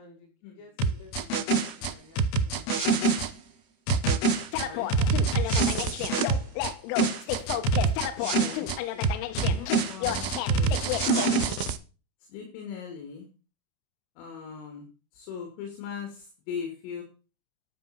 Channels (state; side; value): late; right; 31 ms